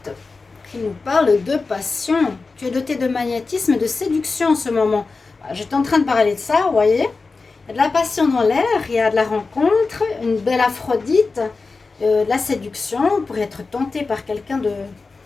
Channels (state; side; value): quieter; right; 4.1 dB